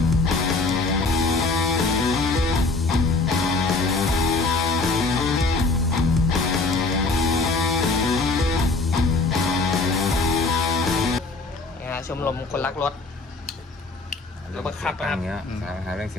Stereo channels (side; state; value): right; quieter; 3.5 dB